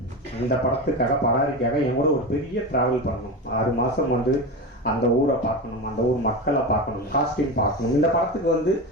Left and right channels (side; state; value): both; normal; correlation 0.22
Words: இந்த படத்துக்காக பராரிக்காக என் கூட ஒரு பெரிய டிராவல் பண்ணணும். 6 மாதம் வந்து அந்த ஊரை பார்க்கணும், அந்த ஊர் மக்களை பார்க்கணும், காஸ்டியூம் பார்க்கணும். இந்த படத்துக்கு வந்து